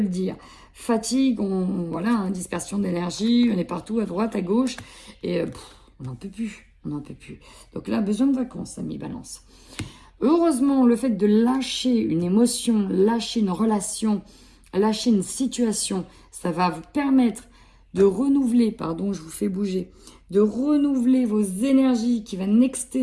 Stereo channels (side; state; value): both; identical; correlation 1.00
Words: dire. Fatigue, voilà, hein, dispersion d'énergie, on est partout, à droite, à gauche. Et on n'en peut plus. On n'en peut plus. Donc là, besoin de vacances, amis Balance. Heureusement, le fait de lâcher une émotion, lâcher une relation, lâcher une situation, ça va vous permettre de renouveler, pardon, je vous fais bouger, de renouveler vos énergies qui va